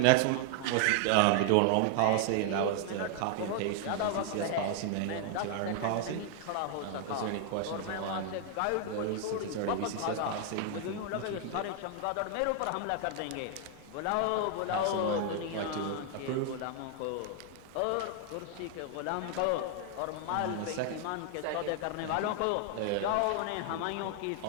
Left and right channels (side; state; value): both; different; correlation 0.00